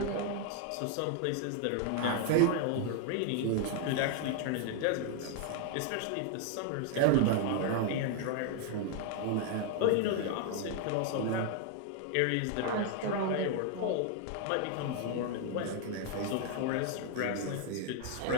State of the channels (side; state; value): both; different; correlation 0.00